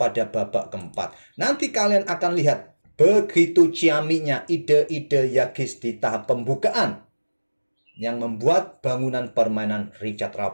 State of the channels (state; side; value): inverted; both; correlation -1.00